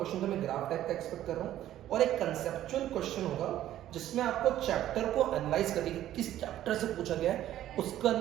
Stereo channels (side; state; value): left; quieter; 12.7 dB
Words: तो मैं ग्राफ टाइप का एक्सपेक्ट कर रहा हूं और एक कंसेप्चुअल क्वेश्चन होगा जिसमें आपको चैप्टर को एनालाइज करने की किस चैप्टर से पूछा गया है, उसके